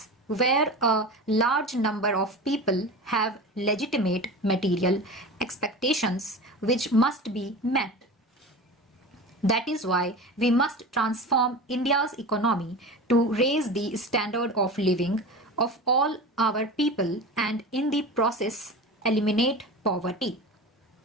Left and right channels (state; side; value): normal; both; correlation 0.31